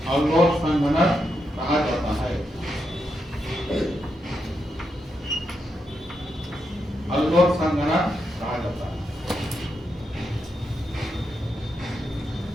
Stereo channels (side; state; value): both; normal; correlation 0.84